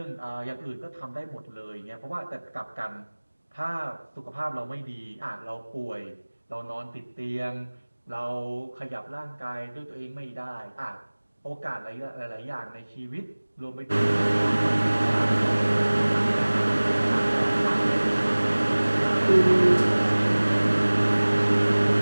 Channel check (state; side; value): inverted; both; correlation -1.00